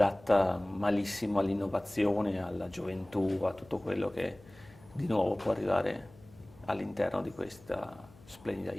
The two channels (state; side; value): noise; left; hum, 24 dB below the sound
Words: malissimo all'innovazione, alla gioventù, a tutto quello che di nuovo può arrivare all'interno di questa splendida